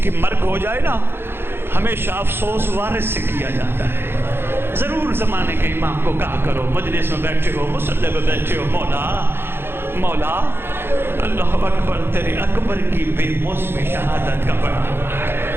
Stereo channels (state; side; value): late; left; 0.11 ms